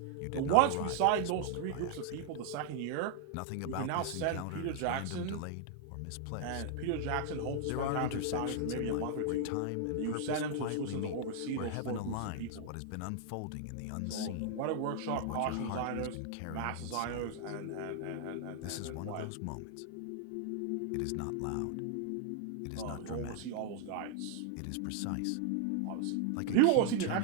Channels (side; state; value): both; different; correlation 0.00